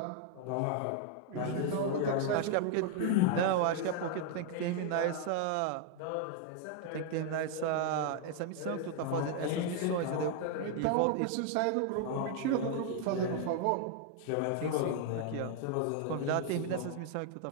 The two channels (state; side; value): different; both; correlation 0.00